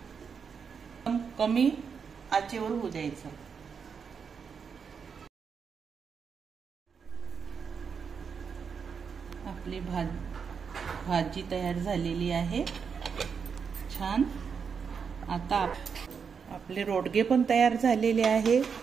कमी आचेवर होऊ द्यायचं. आपली भाजी तयार झालेली आहे. छान. आता आपले रोडगे पण तयार झालेले आहे.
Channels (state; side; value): quieter; left; 6.2 dB